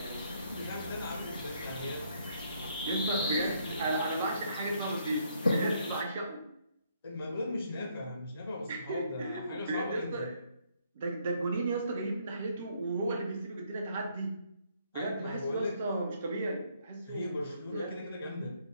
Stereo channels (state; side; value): inverted; both; correlation -0.70